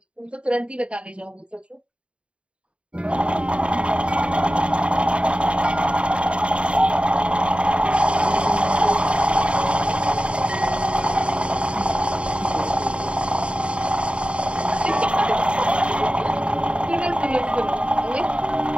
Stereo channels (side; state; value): left; late; 0.058 ms